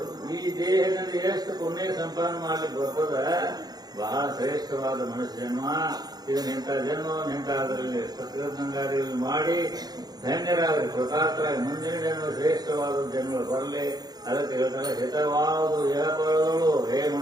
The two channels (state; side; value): late; left; 0.19 ms